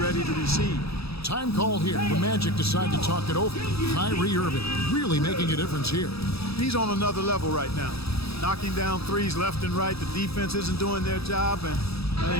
to receive. Time call here. The Magic decide to talk it over. Kyrie Irving really making a difference here. He's on another level right now. Knocking down threes left and right. The defense isn't doing their job, and I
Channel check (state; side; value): late; right; 0.77 ms